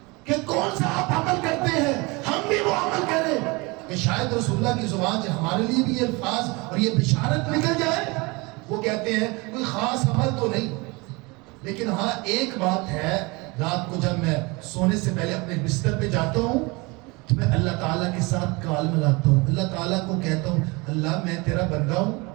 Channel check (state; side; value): quieter; left; 26.0 dB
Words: کہ کون سا آپ عمل کرتے ہیں، ہم بھی وہ عمل کریں کہ شاید رسول اللہ کی زبان سے ہمارے لیے بھی یہ الفاظ اور یہ بشارت نکل جائے۔ وہ کہتے ہیں کوئی خاص عمل تو نہیں، لیکن ہاں ایک بات ہے، رات کو جب میں سونے سے پہلے اپنے بستر پہ جاتا ہوں تو میں اللہ تعالیٰ کے ساتھ کال ملاتا ہوں، اللہ تعالیٰ کو کہتا ہوں اللہ میں تیرا بندہ ہوں،